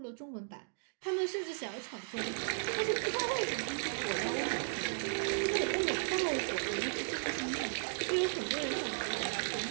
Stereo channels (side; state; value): left; silent; digital silence